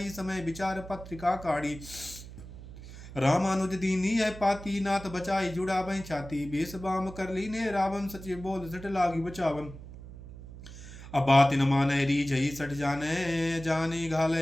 समय विचार पत्रिका काढ़ी रामानुज दीनी है पाती नाथ बचाई जुड़ा बह छाती बेस बाम कर ली ने रावण सचिव बोल सट लागी बचावन अब बात न माने री जई सट जाने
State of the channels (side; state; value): right; noise; hum, 14 dB below the sound